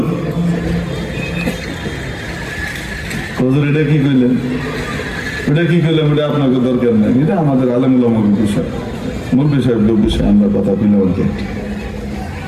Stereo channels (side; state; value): both; identical; correlation 1.00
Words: হুজুর এটা কি কইলেন? ওটা কি করলাম? ওটা আপনাকে দরকার নেই, এটা আমাদের আলেমুল আমাদের বিষয়, মূল বিষয় বিষয় আমরা কথা বলে বলতে।